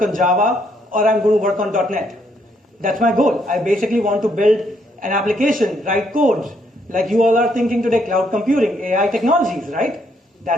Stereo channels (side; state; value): both; normal; correlation 0.72